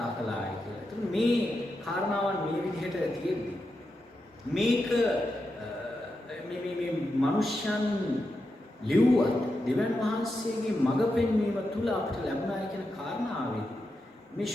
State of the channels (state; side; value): normal; both; correlation 0.87